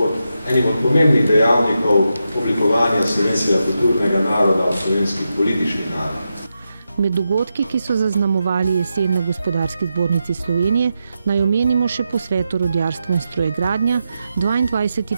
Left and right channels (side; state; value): both; inverted; correlation -0.87